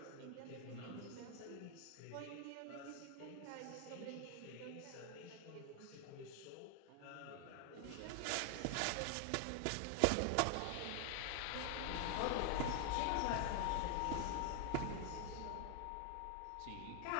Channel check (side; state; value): both; different; correlation 0.00